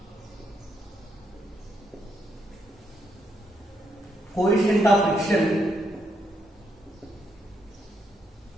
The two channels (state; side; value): normal; both; correlation 0.78